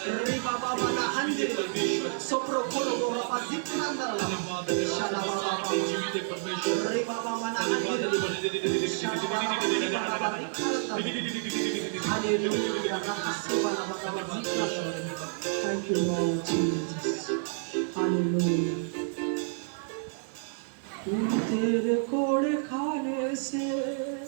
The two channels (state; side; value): silent; left; digital silence